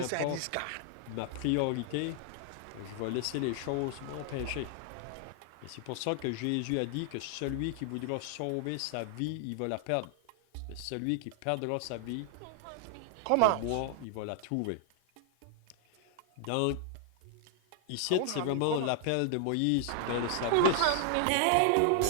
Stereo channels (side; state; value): both; different; correlation 0.00